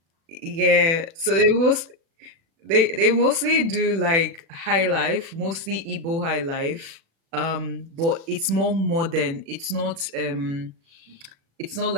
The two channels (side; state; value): left; late; 36 ms